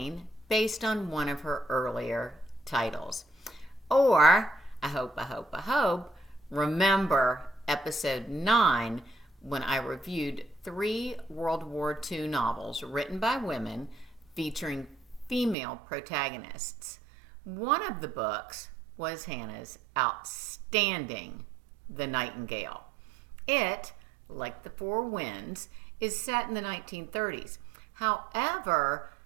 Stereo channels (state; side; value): drops out; left; at 15.6 s